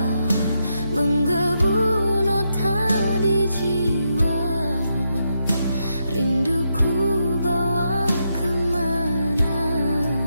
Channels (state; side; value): inverted; both; correlation -0.82